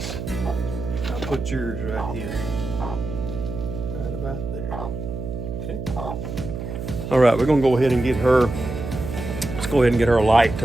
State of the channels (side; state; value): right; noise; hum, 7 dB below the sound